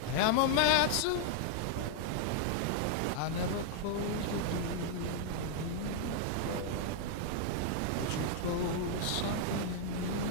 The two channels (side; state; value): both; different; correlation 0.00